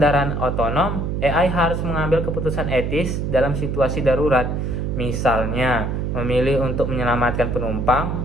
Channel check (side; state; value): right; noise; hum, 1 dB below the sound